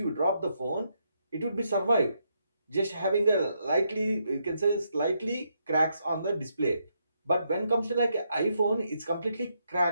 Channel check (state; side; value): inverted; both; correlation -0.79